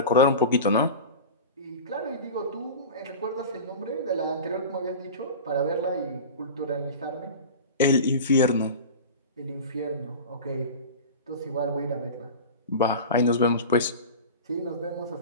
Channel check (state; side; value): inverted; both; correlation -0.31